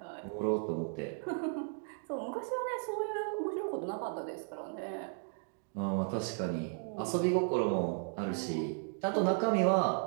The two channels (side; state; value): left; silent; 54 dB below the other